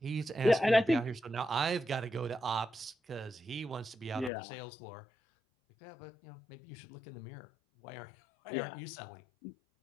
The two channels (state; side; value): drops out; right; at 4.3 s